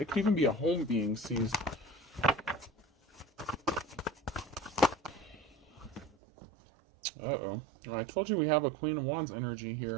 It could even be a home being seized. Uh-oh. I told you we have a Queen of Wands energy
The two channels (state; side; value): drops out; left; at 6.2 s